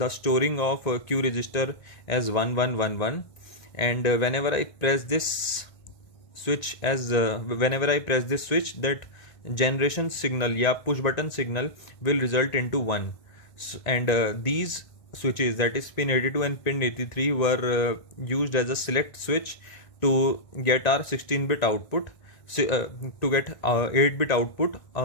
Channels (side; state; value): right; late; 1.9 ms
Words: storing of Q register as 1111, and whenever I press this switch, that generation signal push button signal will result into 1. And these switches, that is pin 82 and pin 83, were used as a select switch to get our 16-bit output, to get 8-bit output